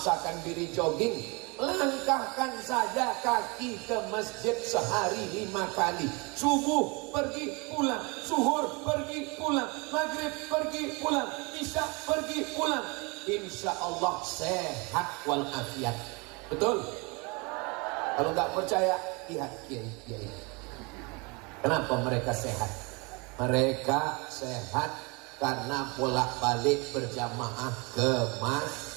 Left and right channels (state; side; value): quieter; left; 28.8 dB